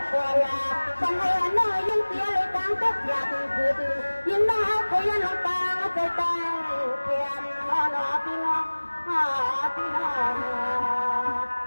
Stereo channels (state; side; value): inverted; both; correlation -1.00